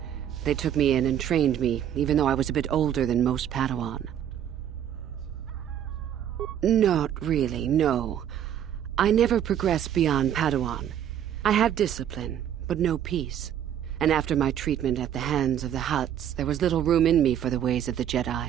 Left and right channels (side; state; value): left; quieter; 10.1 dB